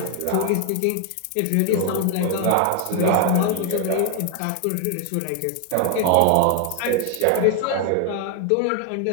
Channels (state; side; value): different; both; correlation 0.01